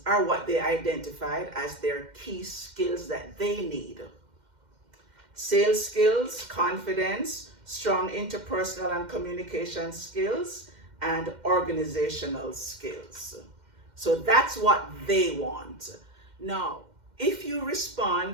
are what they identified as their key skills that they need. Sales skills, confidence, strong interpersonal and communication skills, and organizational skills. So that's what they want. Now, if you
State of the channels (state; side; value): late; left; 2.1 ms